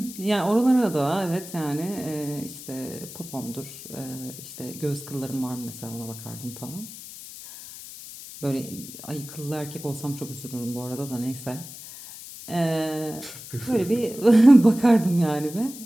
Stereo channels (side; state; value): left; noise; hiss, 14 dB below the sound